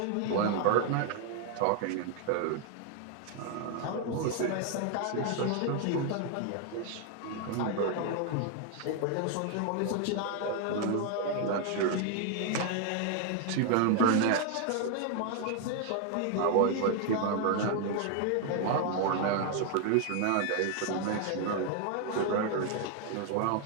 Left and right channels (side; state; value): both; different; correlation 0.00